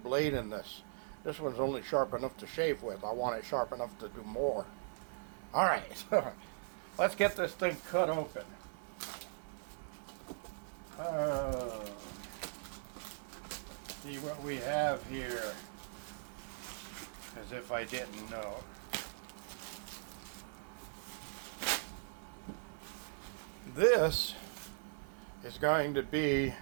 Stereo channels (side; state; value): left; silent; digital silence